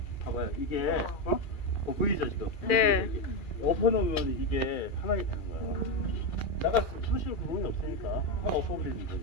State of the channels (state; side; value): late; right; 2.4 ms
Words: 봐봐요. 이게 보이죠 지금? 네. 엎어놓으면 이게 판하게 되는 거야. 나가 수실 구멍이 없으니까 판 엎어버리는